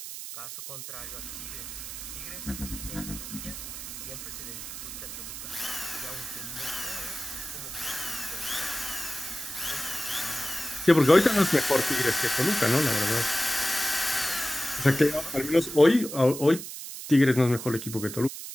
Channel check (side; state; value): right; noise; hiss, 9 dB below the sound